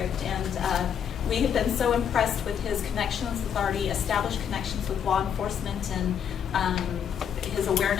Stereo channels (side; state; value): right; quieter; 8.2 dB